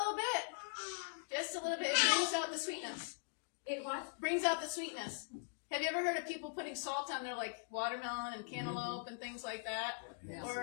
bit. Just a little bit. It brings out the sweetness. It what? Brings out the sweetness. Have you ever heard of people putting salt on their like watermelon and cantaloupe and things like that? Yes.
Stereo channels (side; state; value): right; silent; digital silence